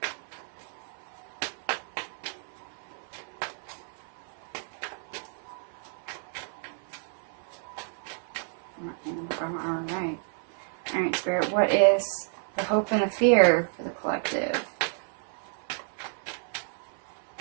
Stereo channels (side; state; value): left; silent; 55 dB below the other